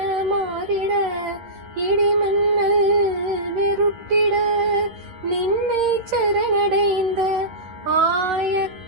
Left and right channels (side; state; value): left; late; 11 ms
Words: மாறிட இடிமன்னல் வெருட்டிட நின்னை சரணடைந்த ஆய